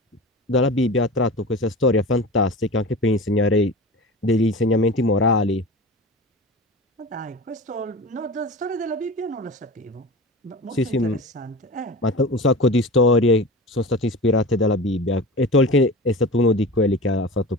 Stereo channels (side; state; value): both; normal; correlation 0.33